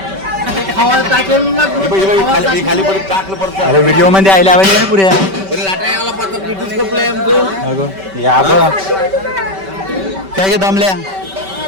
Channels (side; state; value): left; late; 5.2 ms